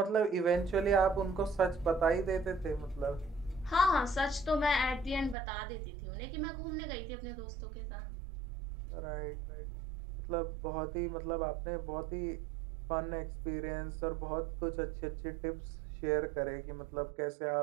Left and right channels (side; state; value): left; drops out; at 5.4 s